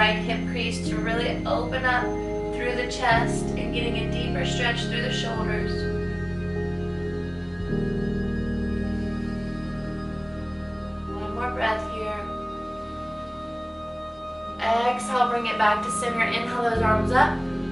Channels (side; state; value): both; identical; correlation 1.00